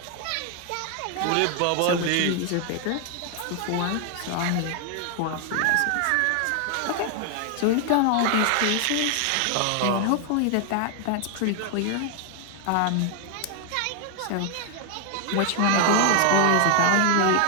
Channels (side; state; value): both; different; correlation 0.00